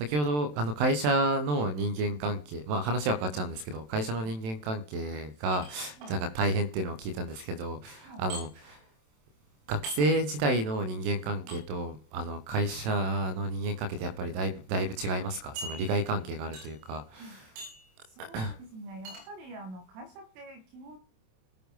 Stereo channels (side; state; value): left; late; 27 ms